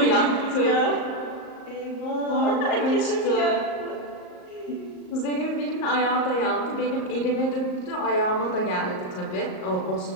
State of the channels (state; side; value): late; right; 38 ms